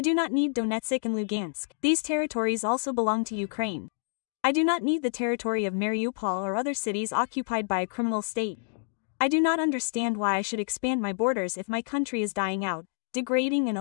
do not need Donetsk and Lugansk. These territories also belong to Ukraine. I do not need the territory of Mariupol or other cities occupied by a criminal state. I do not understand why I should expand my borders if my country is dying out, degrading and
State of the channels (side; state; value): right; silent; digital silence